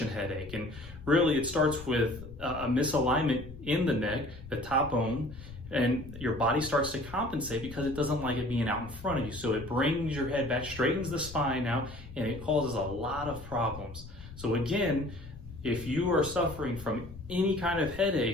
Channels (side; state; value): left; noise; rumble, 15 dB below the sound